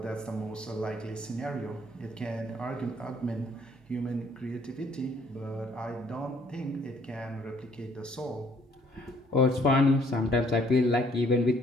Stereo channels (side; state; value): both; normal; correlation 0.62